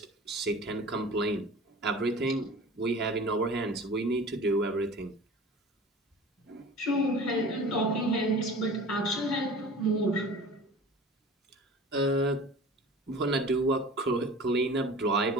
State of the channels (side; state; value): both; normal; correlation 0.40